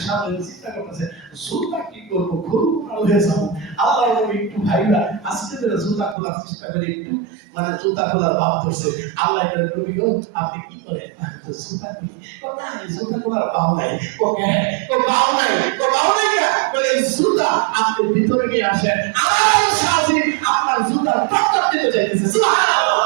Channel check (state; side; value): drops out; left; at 6.2 s